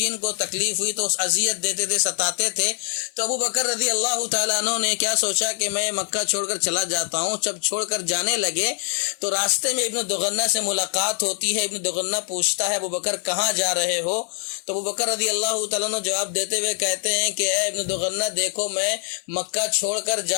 کو تکلیف ہوئی تو اذیت دیتے تھے، ستاتے تھے۔ تو ابو بکر رضی اللہ تعالیٰ عنہ نے کیا سوچا کہ میں مکہ چھوڑ کر چلا جاتا ہوں۔ جب چھوڑ کر جانے لگے تو راستے میں ابن دغنہ سے ملاقات ہوتی ہے۔ ابن دغنہ پوچھتا ہے ابو بکر کہاں جا رہے ہو؟ تو ابو بکر رضی اللہ تعالیٰ عنہ جواب دیتے ہوئے کہتے ہیں کہ اے ابن دغنہ دیکھو، میں مکہ چھوڑ کر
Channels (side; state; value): right; silent; 61 dB below the other